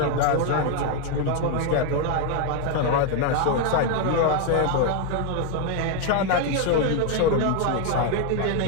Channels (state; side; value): different; both; correlation 0.01